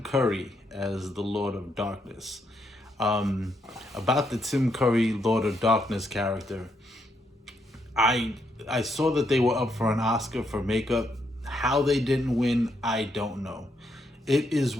Curry as the Lord of Darkness. About the Tim Curry Lord of Darkness character, I I saw that they were up for an Oscar for makeup. How they didn't win, I don't know. It is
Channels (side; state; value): both; normal; correlation 0.77